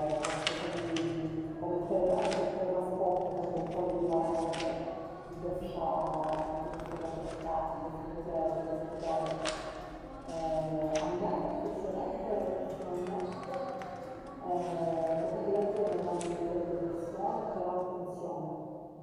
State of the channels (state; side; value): identical; both; correlation 1.00